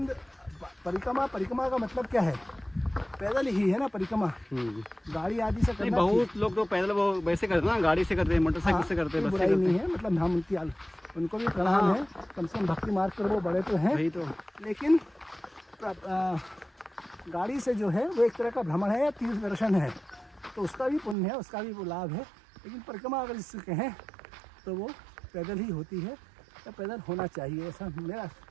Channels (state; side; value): drops out; left; at 21.2 s